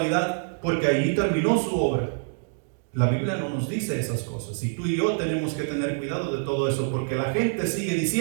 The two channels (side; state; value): left; silent; digital silence